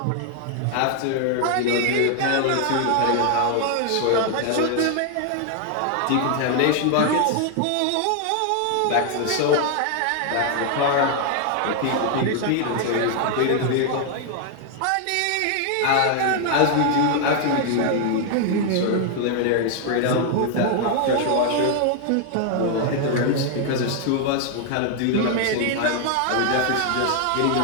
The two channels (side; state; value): both; different; correlation 0.00